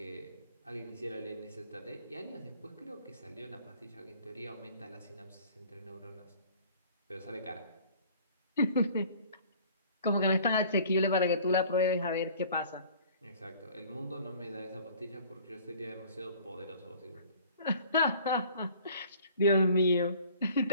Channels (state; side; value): inverted; both; correlation -0.50